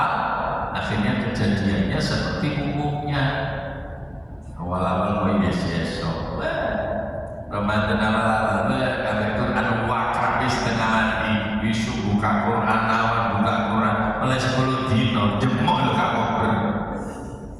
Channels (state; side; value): identical; both; correlation 1.00